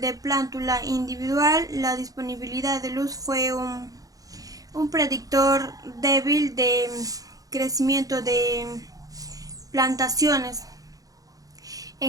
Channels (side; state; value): left; late; 0.17 ms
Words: de plántula individual, la disponibilidad de luz fue un predictor débil de crecimiento de plantaciones